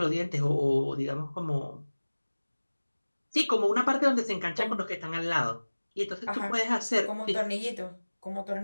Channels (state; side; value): inverted; both; correlation -1.00